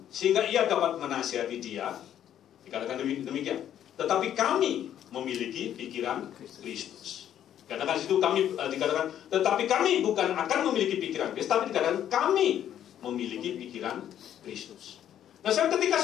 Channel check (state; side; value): quieter; right; 10.5 dB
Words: sehingga ia dapat menasihati dia? Dikatakan demikian. Tetapi kami memiliki pikiran Kristus. Katakan situ kami dikatakan, tetapi kami bukan akan memiliki pikiran Kristus, tapi dikatakan kami memiliki pikiran Kristus. Nah, ketika